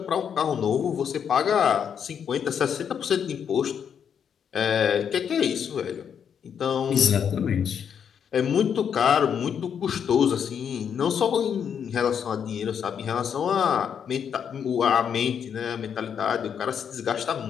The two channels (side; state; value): right; quieter; 7.8 dB